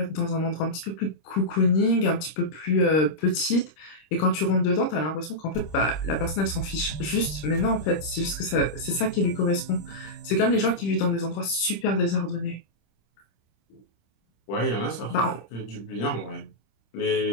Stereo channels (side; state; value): right; late; 26 ms